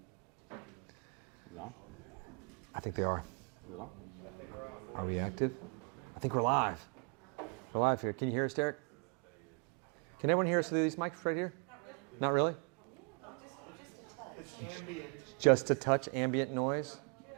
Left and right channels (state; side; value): quieter; left; 37.9 dB